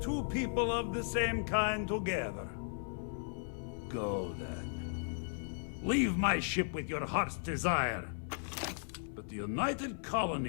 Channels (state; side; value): silent; right; 54 dB below the other